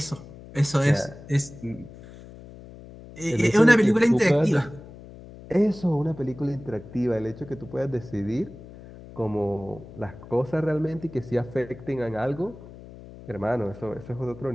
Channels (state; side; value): noise; left; hum, 17 dB below the sound